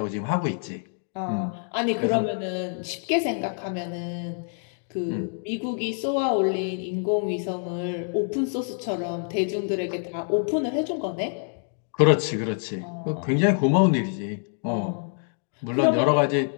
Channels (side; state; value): right; silent; 56 dB below the other